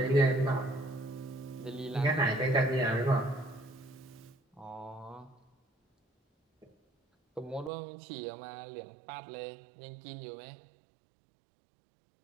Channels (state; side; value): drops out; left; at 7.7 s